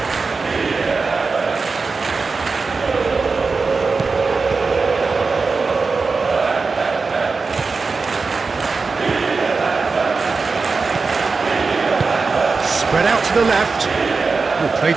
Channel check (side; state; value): left; quieter; 4.4 dB